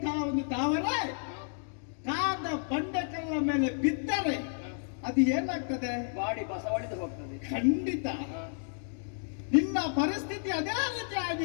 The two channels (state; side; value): silent; right; digital silence